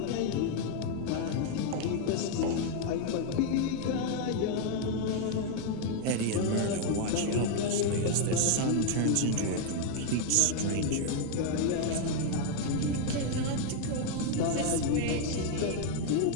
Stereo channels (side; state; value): both; different; correlation 0.00